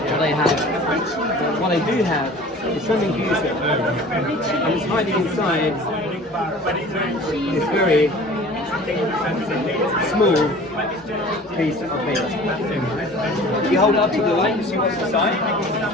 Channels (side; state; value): both; normal; correlation 0.44